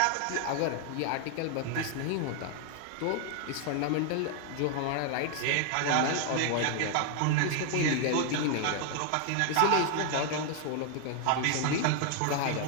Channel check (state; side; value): different; both; correlation 0.00